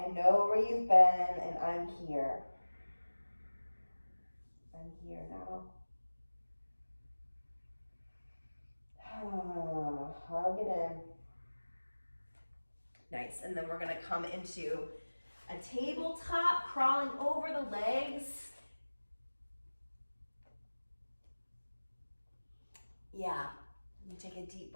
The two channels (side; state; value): both; inverted; correlation -1.00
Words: know where you've been, and I'm here. I'm here now. Hug it in. Nice, and then we're gonna come into a tabletop, crawling over the legs. Yeah, you take a deep